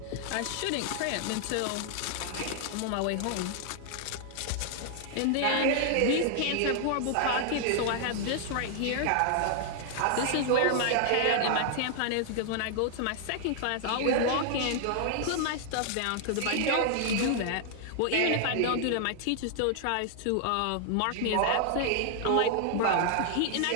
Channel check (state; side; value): different; both; correlation 0.00